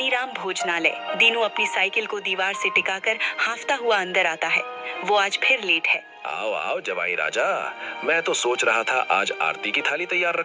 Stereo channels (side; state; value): both; identical; correlation 1.00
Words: भोजनालय। दीनू अपनी साइकिल को दीवार से टिकाकर हांफता हुआ अंदर आता है। वो आज फिर लेट है। आओ आओ जवाई राजा, मैं तो सोच रहा था आज आरती की थाली तैयार